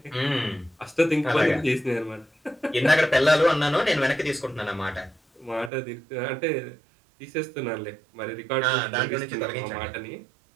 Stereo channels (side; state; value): left; drops out; at 5.7 s